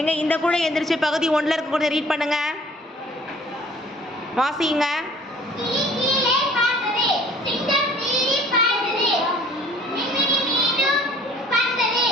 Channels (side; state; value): both; normal; correlation 0.52